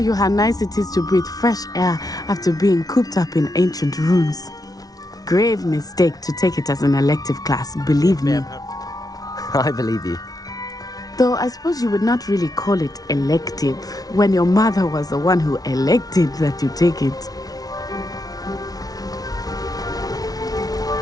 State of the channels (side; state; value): right; late; 0.18 ms